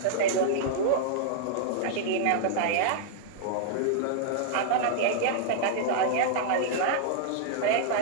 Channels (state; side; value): different; both; correlation -0.01